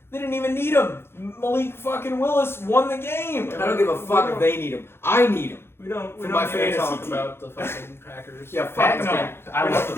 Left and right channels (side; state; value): right; late; 0.12 ms